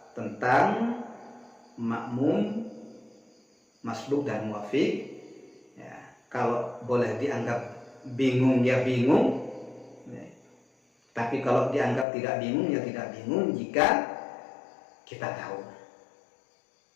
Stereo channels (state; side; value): drops out; right; at 12.1 s